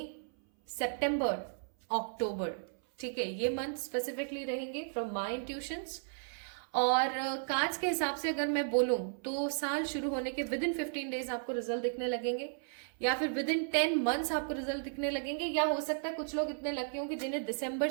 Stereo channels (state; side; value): silent; left; 55 dB below the other